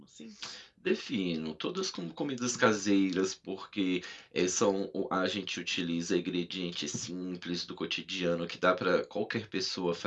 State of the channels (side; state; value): both; identical; correlation 1.00